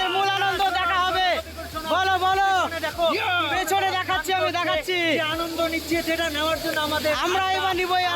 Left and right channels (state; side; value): identical; both; correlation 1.00